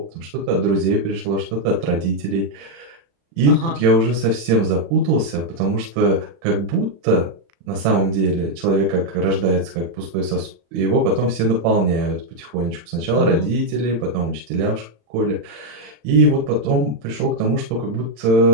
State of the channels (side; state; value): left; late; 36 ms